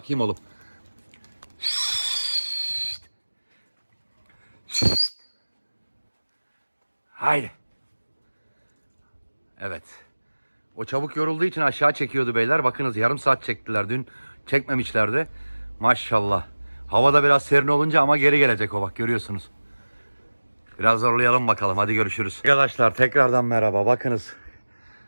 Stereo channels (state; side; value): inverted; both; correlation -1.00